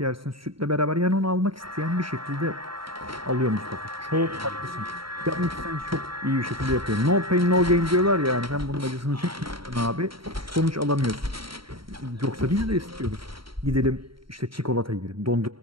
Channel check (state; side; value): late; left; 0.74 ms